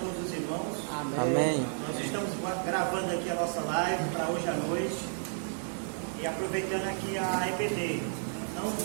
os irmãos. Amém. Nós estamos gravando aqui a nossa live para hoje à noite. E aproveitando aqui a EBD.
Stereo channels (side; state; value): left; silent; digital silence